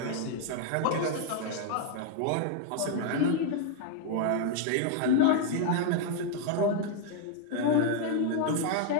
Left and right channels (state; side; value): different; both; correlation 0.00